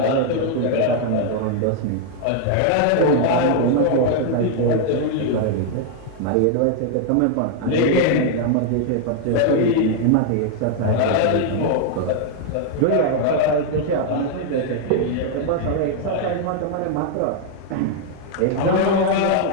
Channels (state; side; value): different; both; correlation 0.00